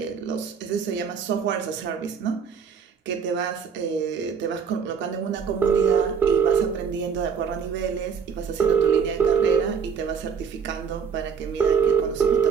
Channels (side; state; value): left; quieter; 6.5 dB